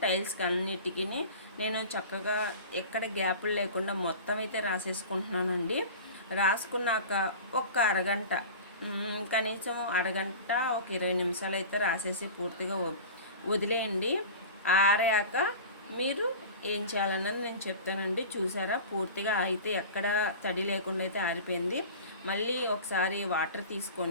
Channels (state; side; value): inverted; both; correlation -0.35